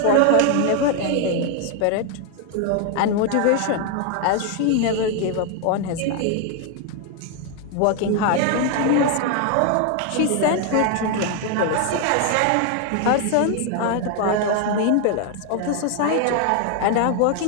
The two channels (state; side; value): different; both; correlation 0.01